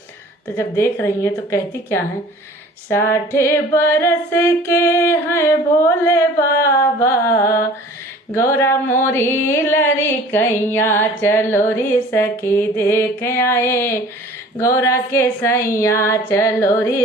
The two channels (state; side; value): normal; both; correlation 0.47